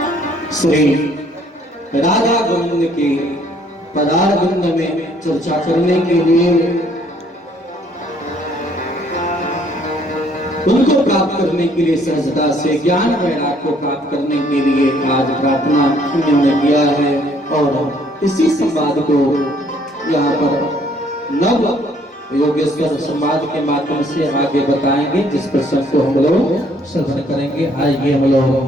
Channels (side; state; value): both; normal; correlation 0.63